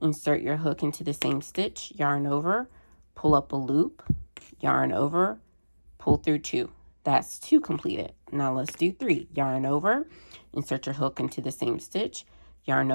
your hook into the same stitch, yarn over, pull up a loop, yarn over, pull through 2. That's 2 completed. Now let's do 3. Yarn over, insert your hook into the same stitch, yarn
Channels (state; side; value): inverted; both; correlation -1.00